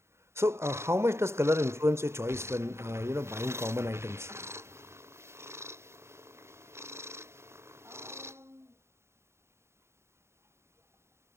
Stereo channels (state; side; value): late; left; 0.13 ms